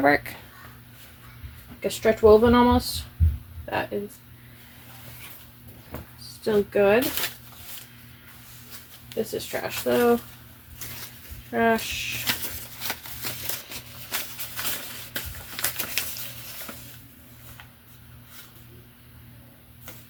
Like a stretch woven almost. That is still good. This is trash though. Trash.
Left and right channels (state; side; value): identical; both; correlation 1.00